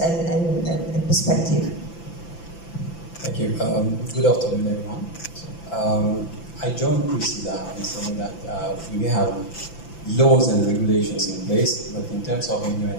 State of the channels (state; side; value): late; right; 5.9 ms